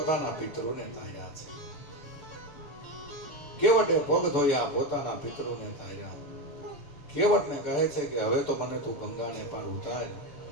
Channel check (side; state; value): right; late; 6.8 ms